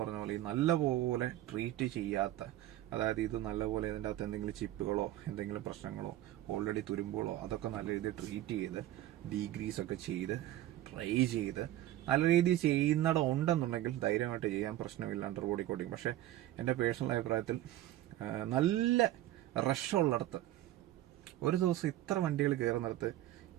പറഞ്ഞ പോലെ നല്ലപോലെ ട്രീറ്റ് ചെയ്യാത്ത, അതായത് ഇത് നല്ലപോലെ ഇതിൻ്റെ അകത്ത് എന്തെങ്കിലും ചിപ്പുകളോ എന്തെങ്കിലും പ്രശ്നങ്ങളോ ഓൾറെഡി തുരുമ്പുകളോ അതൊക്കെ നല്ല രീതിയിൽ ട്രീറ്റ് ചെയ്ത് ഡീഗ്രീസ് ഒക്കെ ചെയ്ത് ട്രൈ ചെയ്ത് നല്ല രീതിയിൽ ചെയ്യുന്നിടം ഉണ്ടെന്നുണ്ടെങ്കിൽ ധൈര്യമായിട്ട് ചെയ്യാൻ പ്രശ്നമില്ല അണ്ടർ ബോഡി കോട്ടിങ്. പക്ഷെ എൻ്റെ പേഴ്സണൽ അഭിപ്രായത്തിൽ നല്ല റഷുള്ളിടത്ത് ഒരു ദിവസം ഇത്ര വണ്ടികൾ കയറുന്നിടത്ത്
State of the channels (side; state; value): left; quieter; 14.3 dB